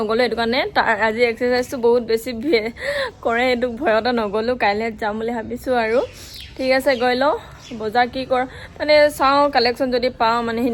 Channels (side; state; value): both; identical; correlation 1.00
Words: এটো কাৰণে আজি এক্সাৰসাইজটো বহুত বেছি কৰে এটো ভয়তে নগলো কাইলে যাম বুলি ভাবিছো আৰু ঠিক আছে গৈ লও বজাৰ কি কৰ মানে চাও কালেকশন যদি পাও মানে